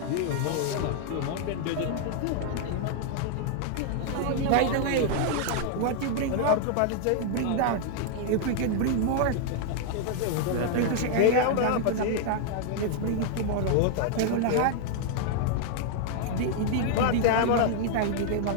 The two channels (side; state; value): both; different; correlation 0.00